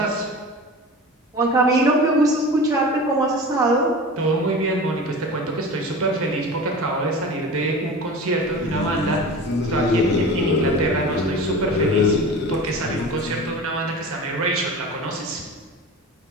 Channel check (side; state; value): both; normal; correlation 0.34